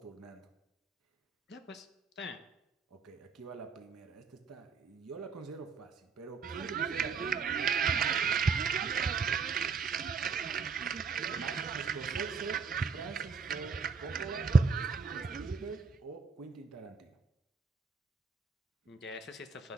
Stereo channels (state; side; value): quieter; left; 5.3 dB